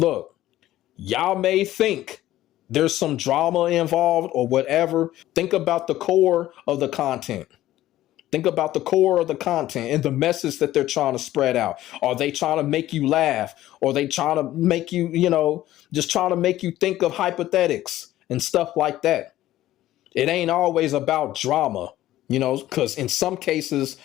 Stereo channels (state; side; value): quieter; right; 14.5 dB